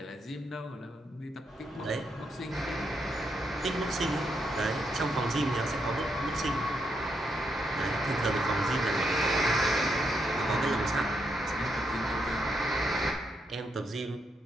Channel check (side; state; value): both; normal; correlation 0.79